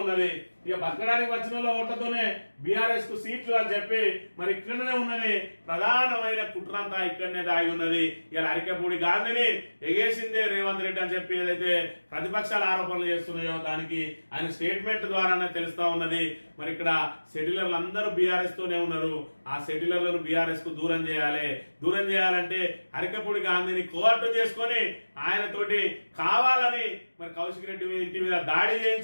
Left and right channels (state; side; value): inverted; both; correlation -1.00